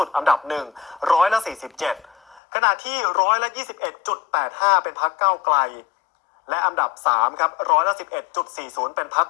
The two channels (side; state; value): right; drops out; at 2.4 s